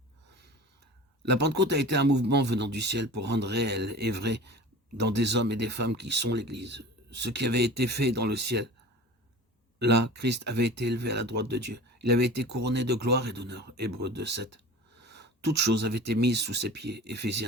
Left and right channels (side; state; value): both; normal; correlation 0.38